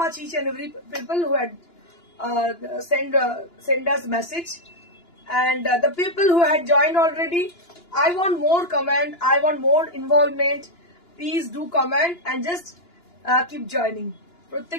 each and every people who had send us message, and the people who had joined already, I want more comment, I want more involvement. Please do comment and just keep joining.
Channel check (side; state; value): right; late; 2.9 ms